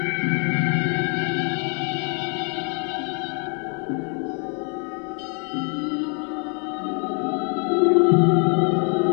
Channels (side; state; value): right; quieter; 39.7 dB